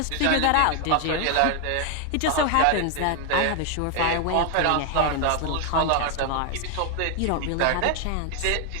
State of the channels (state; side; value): different; both; correlation 0.00